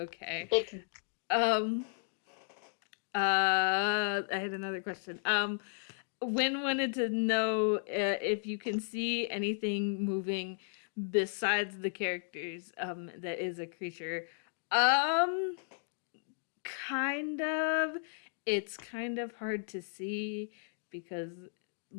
I had another question. Wynne wanted to know if you can see anything moving besides the characters that is a creature. Kind of. It's kind of hard to see because,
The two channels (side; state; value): right; silent; digital silence